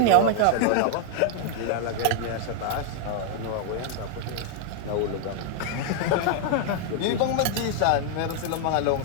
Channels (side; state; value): both; different; correlation 0.00